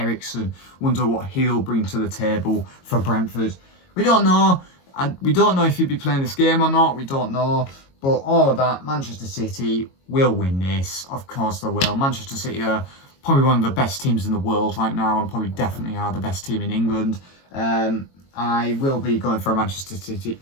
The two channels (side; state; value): right; late; 22 ms